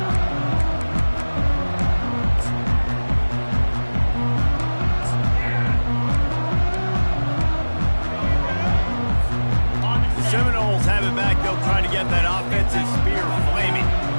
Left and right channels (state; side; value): inverted; both; correlation -1.00